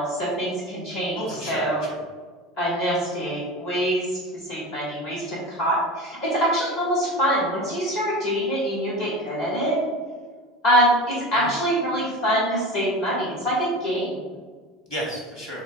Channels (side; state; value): both; normal; correlation 0.30